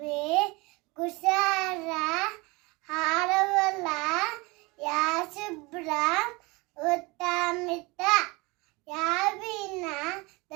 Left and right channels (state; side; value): quieter; left; 25.2 dB